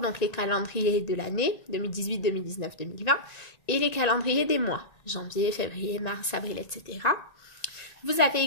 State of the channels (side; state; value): right; late; 1.9 ms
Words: les calendriers de l'année, 2018, 2019, 2020, et les calendriers des mois, janvier, février, mars, avril, etc. Vous avez